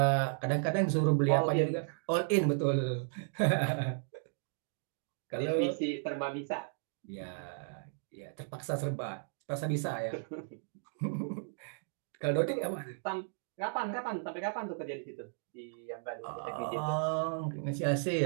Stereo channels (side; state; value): left; silent; digital silence